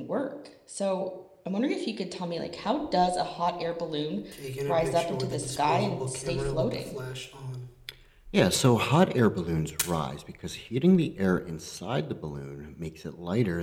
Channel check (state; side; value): identical; both; correlation 1.00